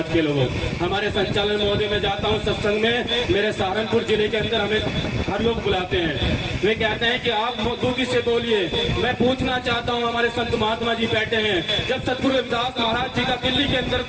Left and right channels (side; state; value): both; identical; correlation 1.00